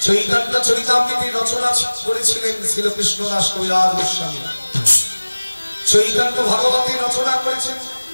চৈতন্য চরিতামৃতের রচনা করেছিলেন শ্রীকৃষ্ণ দাস কবিরাজ গোস্বামী। চৈতন্য ভাগবতের রচনা করেছেন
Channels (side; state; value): both; inverted; correlation -1.00